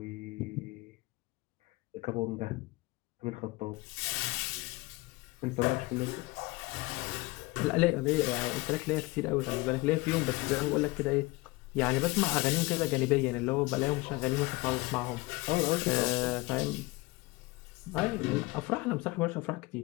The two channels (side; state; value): right; quieter; 23.0 dB